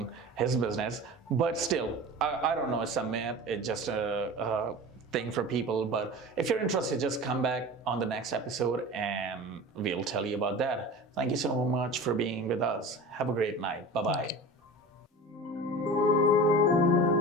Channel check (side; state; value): both; normal; correlation 0.35